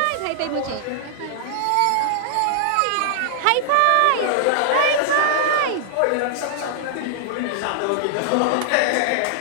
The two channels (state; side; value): different; both; correlation -0.01